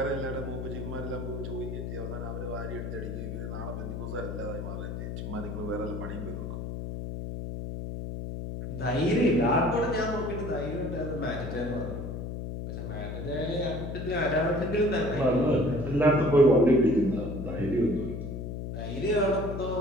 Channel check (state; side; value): noise; left; hum, 6 dB below the sound